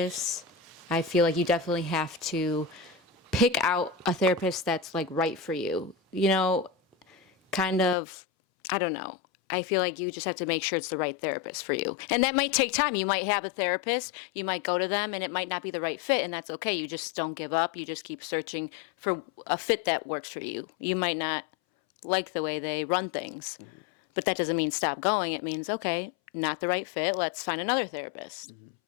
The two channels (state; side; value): drops out; right; at 8.0 s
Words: I feel like you definitely have to pick out a therapist that's like right for you. You know, kind of, I don't know. I feel like you just have to make sure it's the right therapist for you. And that might take time. You might have a therapist, you might go to them, and it might not be the right fit, and that's okay. You just don't give up. You just keep searching for a fit that works for you. You might not like the way they run things, but that doesn't mean stop going. It means, okay, not the right fit. Let's find another therapist